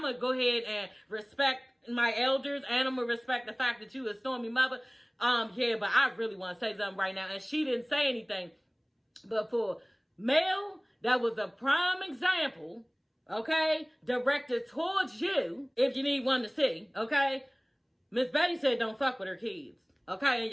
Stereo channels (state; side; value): identical; both; correlation 1.00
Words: gonna go ahead and respect my elders, and I'm gonna respect the fact that you a Stormy mother. Yeah, but I really want to say something right now. And she didn't say anything. But for Mel, that was a prime example, okay, directed towards you, if you need one to see, okay? Miss Betty said don't fuck with her kids, okay? And